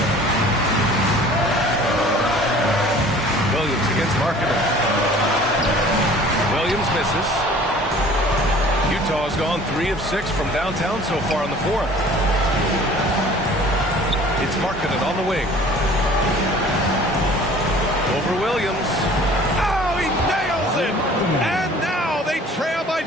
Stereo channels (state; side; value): normal; both; correlation 0.49